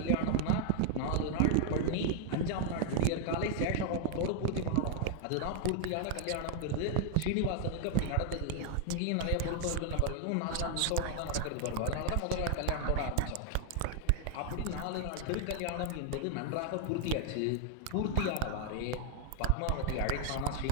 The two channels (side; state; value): both; different; correlation 0.00